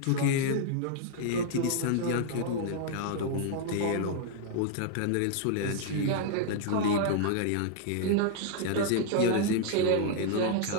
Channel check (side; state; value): both; different; correlation 0.00